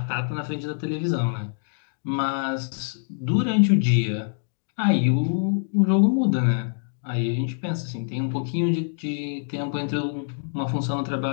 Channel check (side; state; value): right; silent; digital silence